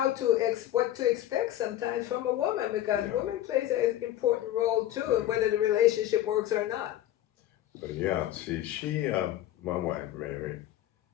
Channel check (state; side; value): quieter; right; 13.1 dB